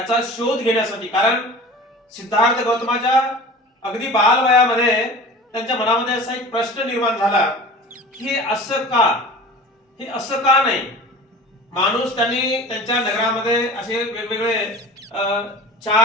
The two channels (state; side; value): normal; both; correlation 0.38